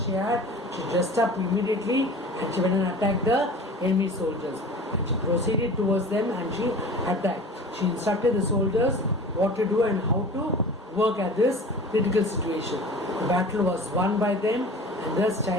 she had, she dressed up immediately and she went and attacked the enemy soldiers. And she proceeded towards them and she attacked. She instructed the soldiers what to do and how to work at this critical situation. The battle was won by them, and thus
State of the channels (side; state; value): both; normal; correlation 0.40